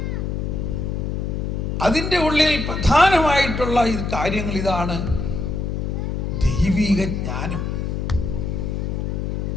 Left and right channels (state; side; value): noise; left; hum, 2 dB below the sound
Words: അതിൻ്റെ ഉള്ളിൽ പ്രധാനമായിട്ടുള്ള കാര്യങ്ങൾ ഇതാണ്: ദൈവിക ജ്ഞാനം.